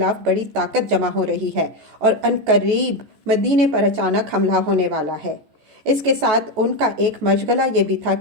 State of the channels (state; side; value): late; left; 14 ms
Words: بڑی طاقت جمع ہو رہی ہے اور عنقریب مدینے پر اچانک حملہ ہونے والا ہے۔ اس کے ساتھ ان کا ایک مشغلہ یہ بھی تھا